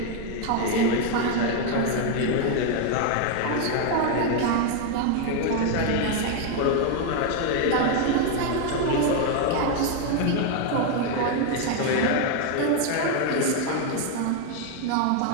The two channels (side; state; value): both; different; correlation 0.01